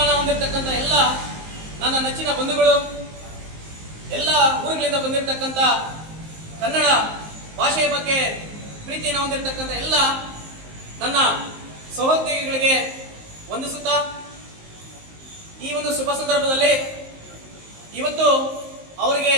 ಹೊಂದಿರತಕ್ಕಂಥ ಎಲ್ಲ ನನ್ನ ನೆಚ್ಚಿನ ಬಂಧುಗಳು, ಎಲ್ಲ ಊರುಗಳಿಂದ ಬಂದಿರತಕ್ಕಂಥ ಕನ್ನಡ ಭಾಷೆಯ ಬಗ್ಗೆ ಪ್ರೀತಿಯನ್ನು ಹೊಂದಿರತಕ್ಕಂಥ ಎಲ್ಲ ನನ್ನ ಸಹೋದ್ಯೋಗಿಗಳಿಗೆ ವಂದಿಸುತ್ತಾ, ಈ ಒಂದು ಶುಭ ಸಂದರ್ಭದಲ್ಲಿ ಇವತ್ತು ಅವರಿಗೆ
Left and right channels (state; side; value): late; left; 19 ms